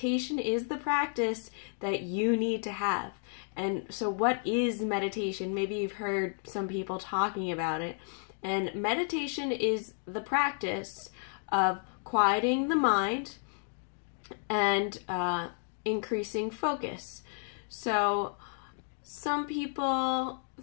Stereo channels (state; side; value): silent; right; 56 dB below the other